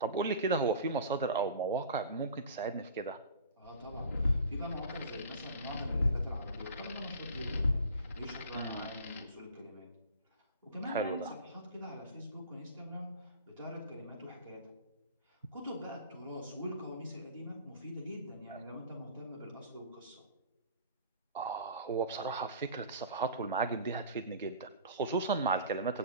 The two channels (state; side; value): inverted; both; correlation -0.41